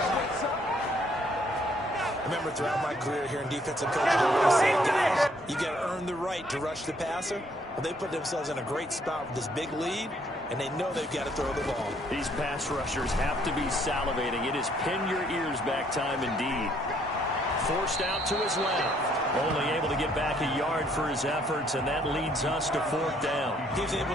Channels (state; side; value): normal; both; correlation 0.66